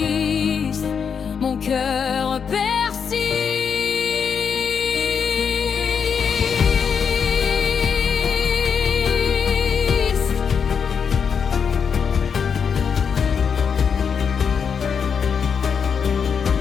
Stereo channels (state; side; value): quieter; right; 6.6 dB